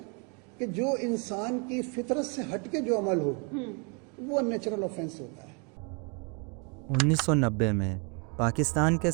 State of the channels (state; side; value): quieter; left; 34.6 dB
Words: कि जो इंसान की फितरत से हटके जो अमल हो वो अननेचुरल ऑफेंस होता है। 1990 में पाकिस्तान के